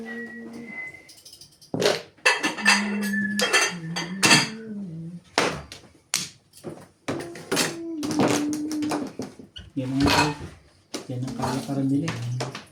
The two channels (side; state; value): both; identical; correlation 1.00